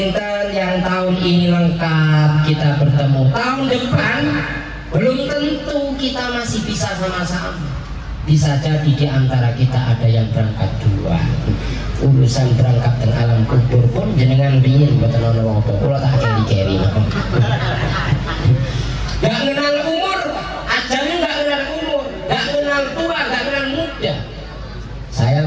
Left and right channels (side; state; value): both; identical; correlation 1.00